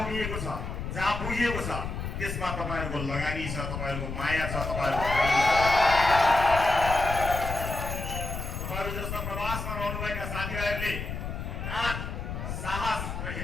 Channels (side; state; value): left; noise; rumble, 5 dB below the sound